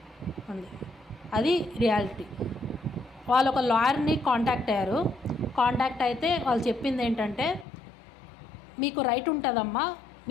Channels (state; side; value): drops out; right; at 7.7 s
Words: ఉంది. అది రియాలిటీ. వాళ్ళు ఒక లాయర్ని కాంటాక్ట్ అయ్యారు. కాంటాక్ట్ అయితే వాళ్ళు చెప్పింది ఏంటంటే, మీకు రైట్ ఉంటుందమ్మా,